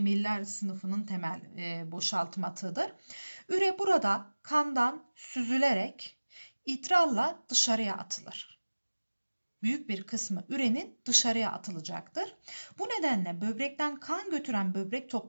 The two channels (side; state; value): both; inverted; correlation -1.00